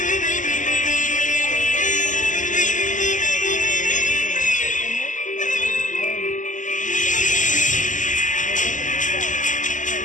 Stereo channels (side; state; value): right; late; 0.37 ms